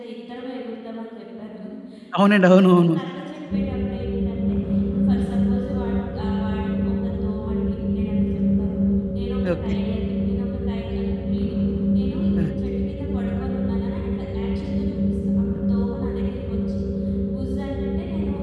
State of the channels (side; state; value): both; identical; correlation 1.00